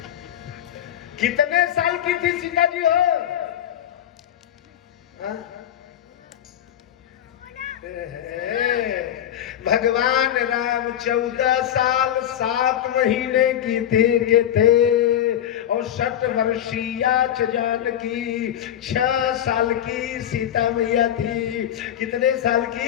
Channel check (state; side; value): quieter; right; 10.8 dB